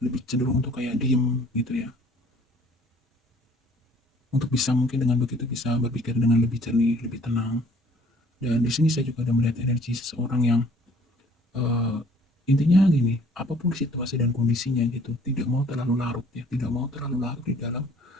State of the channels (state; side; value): normal; both; correlation 0.56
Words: lebih cenderung untuk kayak diem gitu ya. Untuk bisa mungkin dengan begitu bisa berpikir dengan lebih jernih, lebih tenang. Dan di sini saya juga ada melihat energi seseorang yang uh, intinya gini, apapun situasi dan kondisinya gitu, tidak mau terlalu larut ya, tidak mau terlalu larut di dalam